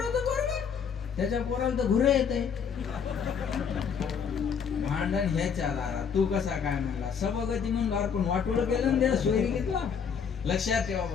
पोरग, त्याच्या पोराला तर घुरे येते. भांडण ह्याच्या दारात, तू कसा काय म्हणला, सभागती म्हणून अर्पण वाटोळं केलं ना, सोयरी घेतला. लक्षात ठेवा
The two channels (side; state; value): right; quieter; 6.8 dB